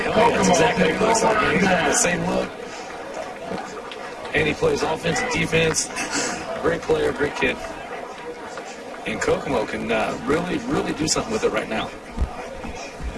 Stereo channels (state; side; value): identical; both; correlation 1.00